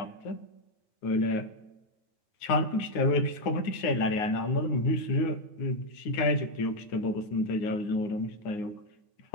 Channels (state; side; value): late; right; 9.6 ms